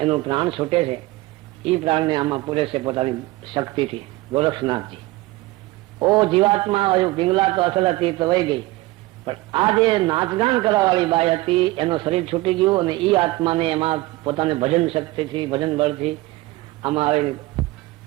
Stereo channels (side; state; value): left; quieter; 20.0 dB